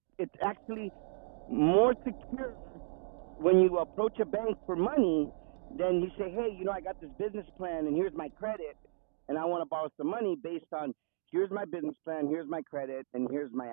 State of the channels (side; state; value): left; silent; digital silence